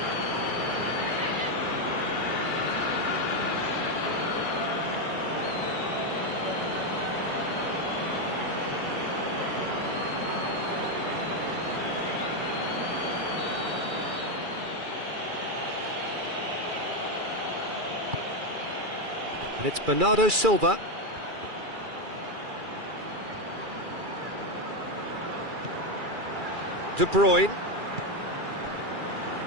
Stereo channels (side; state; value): left; late; 2.3 ms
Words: And it's Bernardo Silva. De Bruyne.